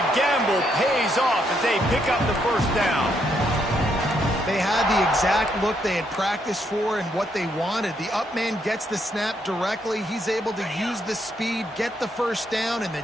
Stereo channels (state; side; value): normal; both; correlation 0.75